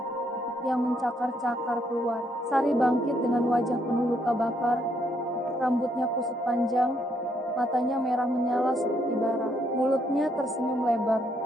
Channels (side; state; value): both; normal; correlation 0.73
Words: yang mencakar-cakar keluar. Sari bangkit dengan wajah penuh luka bakar, rambutnya kusut panjang, matanya merah menyala seperti bara. Mulutnya tersenyum lebar,